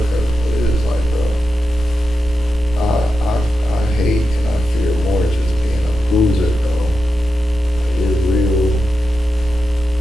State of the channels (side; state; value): both; normal; correlation 0.89